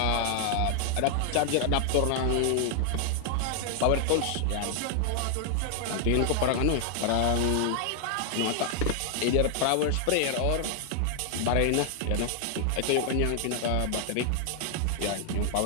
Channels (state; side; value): different; both; correlation 0.00